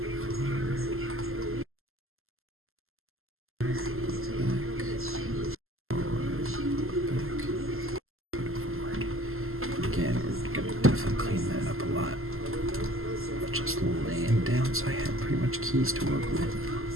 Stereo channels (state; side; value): late; left; 0.62 ms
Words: So I have pretty much keys to work with.